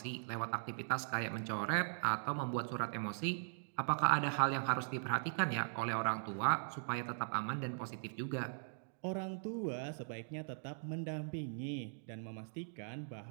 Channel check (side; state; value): left; silent; digital silence